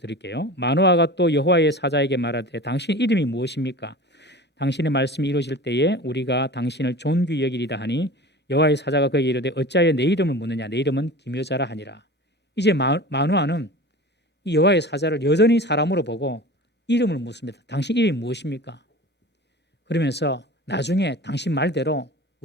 마노아가 또 여호와의 사자에게 말하되 당신 이름이 무엇입니까? 당신의 말씀이 이루어질 때에 우리가 당신을 존귀 여기리다 하니 여호와의 사자가 그에게 이르되 어찌하여 내 이름을 묻느냐 내 이름은 기묘자라 하니라. 이제 마노아는 이 여호와의 사자를 여전히 사람으로 보고 이름을 묻습니다. 당신 이름이 무엇입니까? 그러면서 나중에 당신 말대로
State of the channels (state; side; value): normal; both; correlation 0.36